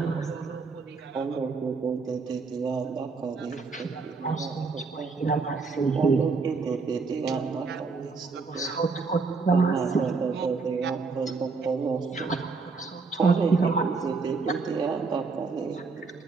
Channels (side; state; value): left; quieter; 4.5 dB